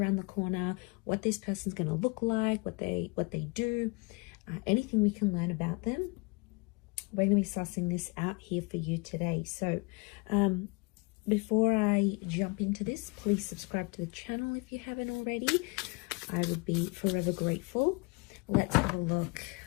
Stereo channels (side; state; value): right; quieter; 29.2 dB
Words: the corner, what this person's going to look like, what they do, anything we can learn about them. We're going to be sussing this out here for you today. So before I jump into this, please subscribe to the channel if you haven't already. I would be forever grateful. Let's have a look.